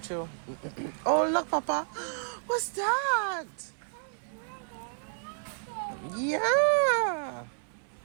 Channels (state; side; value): silent; left; 57 dB below the other